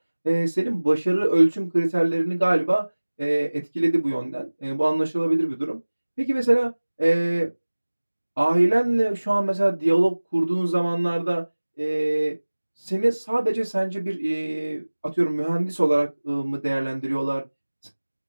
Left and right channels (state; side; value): inverted; both; correlation -1.00